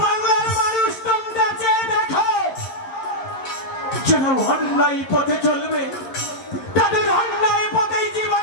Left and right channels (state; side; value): late; right; 11 ms